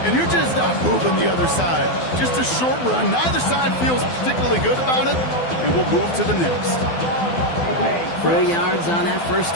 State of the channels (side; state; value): right; late; 12 ms